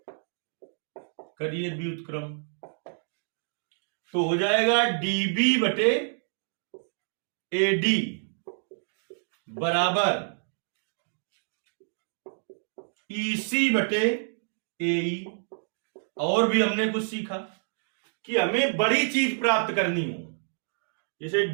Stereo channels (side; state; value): left; silent; digital silence